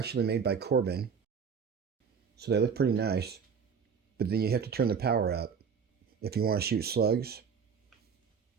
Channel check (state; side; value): quieter; left; 6.4 dB